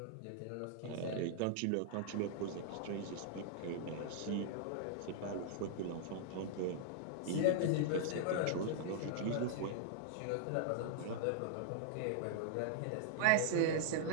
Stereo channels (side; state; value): both; different; correlation -0.01